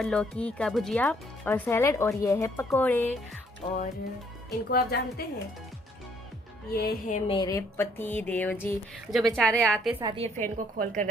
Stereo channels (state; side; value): normal; both; correlation 0.65